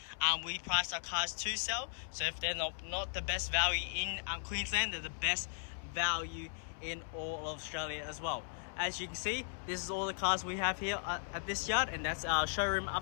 We price our cars to sell. So if they're not the best value in Queensland, they're the best value in all of Australia as well. As you can see, this is all the cars we have here at this yard, and that's our showroom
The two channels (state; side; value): silent; right; 53 dB below the other